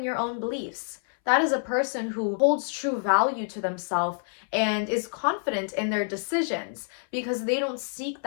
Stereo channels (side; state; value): right; silent; 60 dB below the other